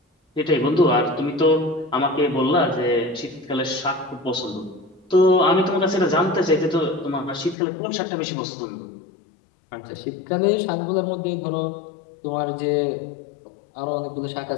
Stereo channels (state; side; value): drops out; right; at 7.6 s